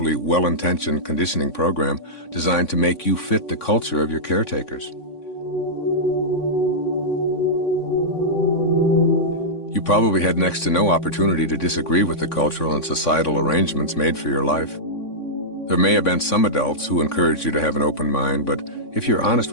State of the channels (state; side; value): late; right; 3.6 ms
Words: well-intentioned conditioning program designed to make you fit the culture of your caretakers. You probably had next to no opportunity to disagree with the cultural and societal arrangements made for your life. There may have been some adults who encouraged you to have an open mind, but if you're honest